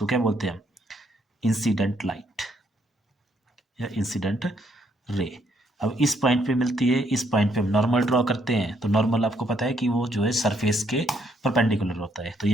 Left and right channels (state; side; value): normal; both; correlation 0.71